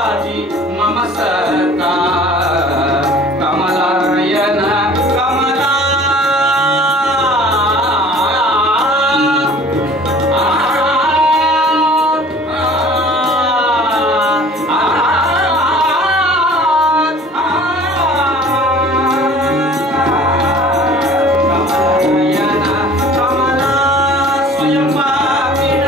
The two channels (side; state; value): both; normal; correlation 0.48